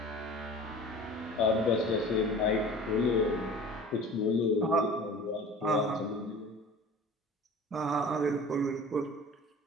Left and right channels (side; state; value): both; normal; correlation 0.41